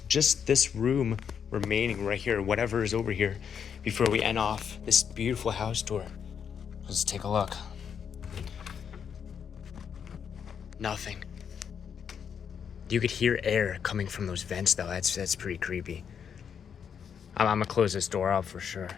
just this room remaining right here, whatever is over here, before we end off this beautiful house tour. Let's take a look. Nothing. You could hear air coming from those vents though. That's pretty creepy. I'm gonna close this door up for sure.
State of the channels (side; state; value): right; quieter; 7.5 dB